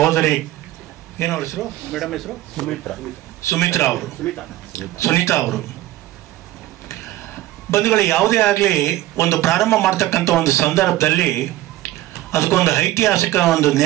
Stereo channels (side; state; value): left; quieter; 15.6 dB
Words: ಏನವ್ರ ಹೆಸರು ಮೇಡಮ್ ಹೆಸರು ಸುಮಿತ್ರಾ ಅವರು ಸುನೀತಾ ಅವರು ಬಂಧುಗಳು, ಯಾವುದೇ ಆಗಲಿ ಒಂದು ಪ್ರಾರಂಭ ಮಾಡ್ತಕ್ಕಂಥ ಒಂದು ಸಂದರ್ಭದಲ್ಲಿ ಅದಕ್ಕೊಂದು ಐತಿಹಾಸಿಕ ಒಂದು